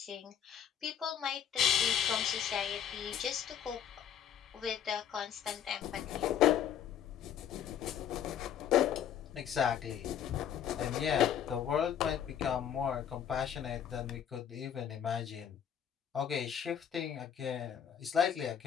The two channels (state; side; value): quieter; right; 9.2 dB